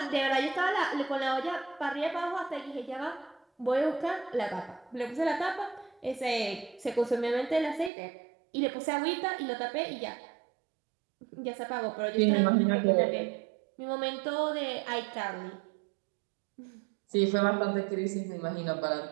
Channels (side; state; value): left; drops out; at 7.9 s